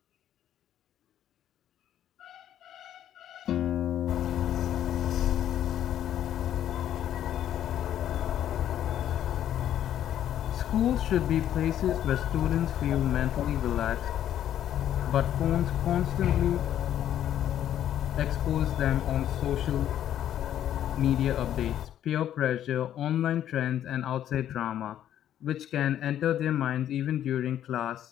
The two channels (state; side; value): quieter; right; 11.0 dB